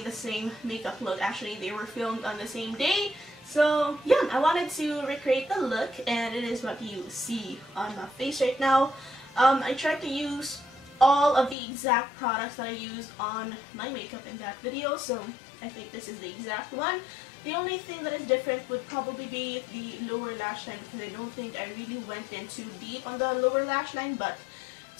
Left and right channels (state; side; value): drops out; right; at 11.6 s